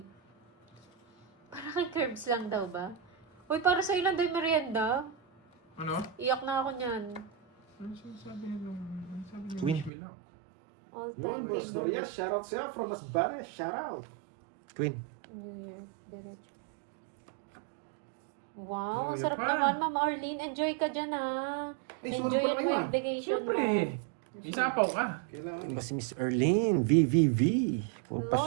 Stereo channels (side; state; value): left; drops out; at 9.9 s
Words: Parang kay Curbs lang daw ba? Uy, para sa'yo lang daw yung merienda. Ano? Iyak na ako niyan. Ano sabi niyo? Ano sabi niyo? Queen. Wish me luck. All Yun, time. boss Dorias, shout out sa'yo from Masbate, shout out. Queen. New Year, diretso. Wow, Oh, ang sarap yan pa. naman, Ma'am Arlene. Enjoy ka dyan, ha. Ay, sunog pala kayo, mo ah. yung vacation Siyempre. mo. Isapaw ka. Kailangan eh. Ba si Miss Erlene, VVV.